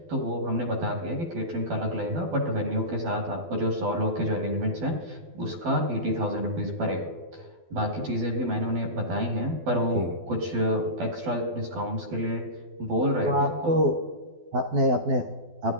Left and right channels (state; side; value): late; left; 12 ms